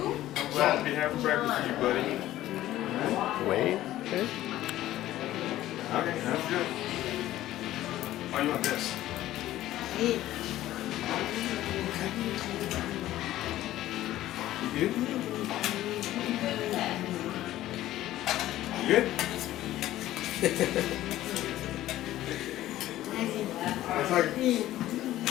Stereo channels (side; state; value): right; quieter; 14.5 dB